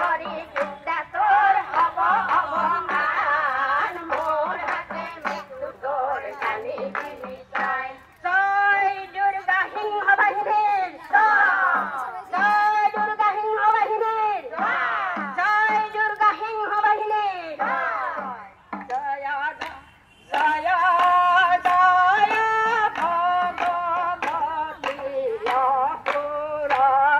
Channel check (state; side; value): identical; both; correlation 1.00